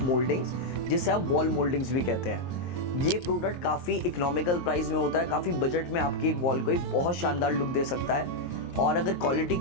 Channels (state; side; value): late; right; 23 ms